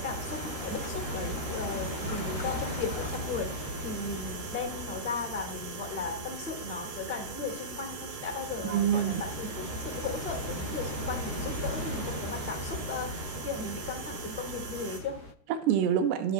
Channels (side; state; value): left; late; 13 ms